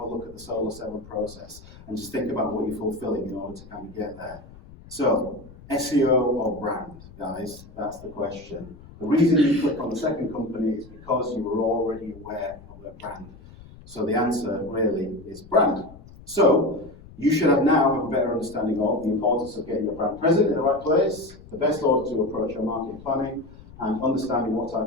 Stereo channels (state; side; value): noise; left; rumble, 20 dB below the sound